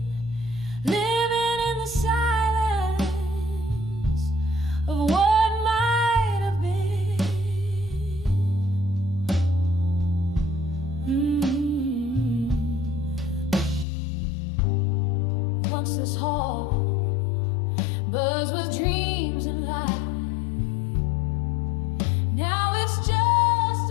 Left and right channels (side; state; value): right; drops out; at 13.9 s